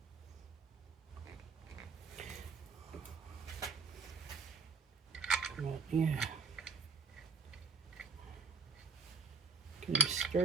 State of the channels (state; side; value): quieter; left; 4.5 dB